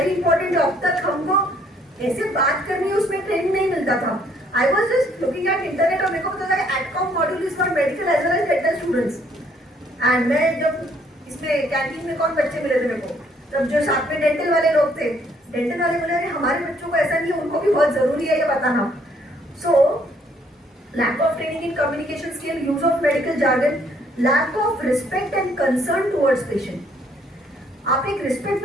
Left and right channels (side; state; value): both; normal; correlation 0.65